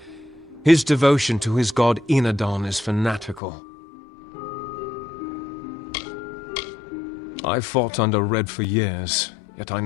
His devotion to his god Enadon is fanatical. I fought under Red for years, yet I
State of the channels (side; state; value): right; drops out; at 3.4 s